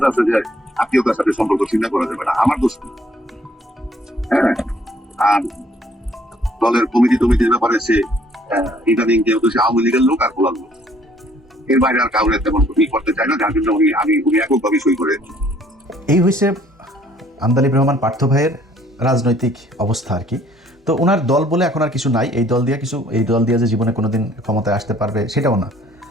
আছে যে আত্মীয়তার সাথে সম্পর্ক চিন্তা করা যাবে না, আমার দোষ। হ্যাঁ, আর দলের কমিটির ব্যাপারে সে ইদানিং যেহেতু সে আওয়ামী লীগের লোক আর বলার লোক, এর বাইরে আর কাউরে তেমন করতে চায় না, যার জন্য উনি এককভাবে সই করে। এই হয়েছে আন্দালিব রহমান পার্থ ভাইয়ের রাজনৈতিক অবস্থা আর কি। তো ওনার দল বলে এখন আর কিছু নাই, এই দল দিয়ে যে জীবনে কোনোদিন ক্ষমতায় আসতে পারবে সেটাও না।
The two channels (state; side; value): normal; both; correlation 0.61